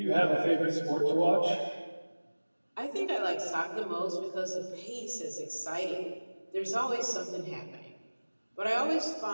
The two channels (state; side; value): inverted; both; correlation -1.00